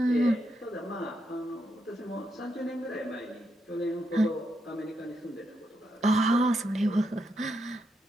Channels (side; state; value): both; normal; correlation 0.81